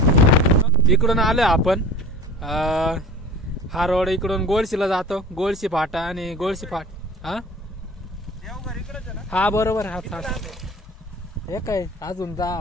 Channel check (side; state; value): both; normal; correlation 0.39